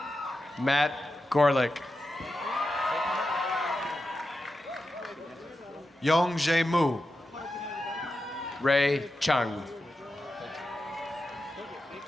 Matt Gorlick. Yong Jae Mu. Ray Chung.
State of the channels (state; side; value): normal; both; correlation 0.90